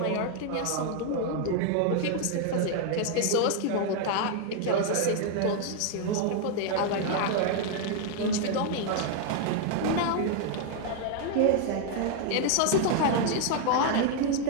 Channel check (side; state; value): both; different; correlation 0.00